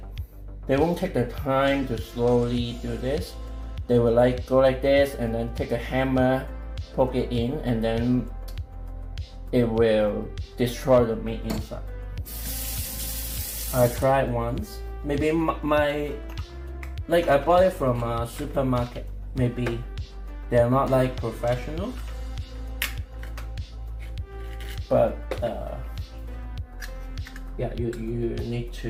take the time to slowly do this. They will like go like this and then take a hammer, poke it in, and then it will destroy the meat inside. I tried once. Maybe I bought it from a supermarket. Maybe they're not like professional, but yeah, you need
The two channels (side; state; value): both; identical; correlation 1.00